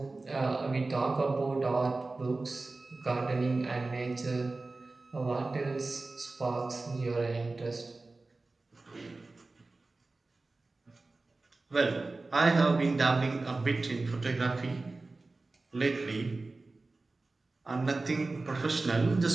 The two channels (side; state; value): left; quieter; 3.4 dB